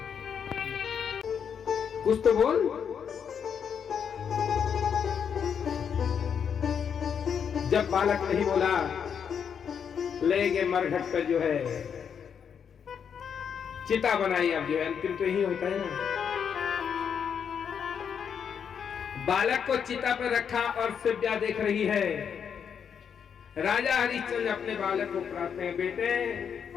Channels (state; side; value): quieter; right; 7.4 dB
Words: कुछ तो बोल। जब बालक नहीं बोला, ले गए मरघट पर जो है चिता बनाई। अब जो है अंतिम तो यही होता है ना। बालक को चिता पर रखा और सिव्या देख रही है। राजा हरिश्चंद्र अपने बालक को कहते हैं, बेटे